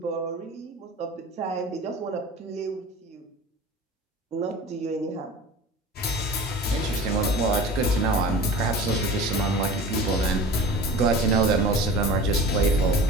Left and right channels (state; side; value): normal; both; correlation 0.38